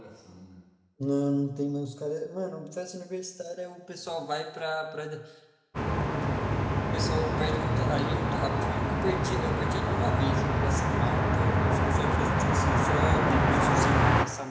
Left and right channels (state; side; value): identical; both; correlation 1.00